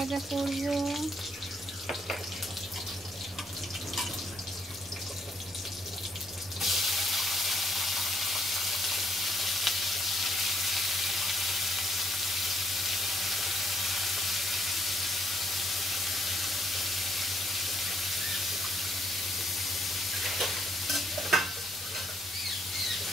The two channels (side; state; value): both; normal; correlation 0.70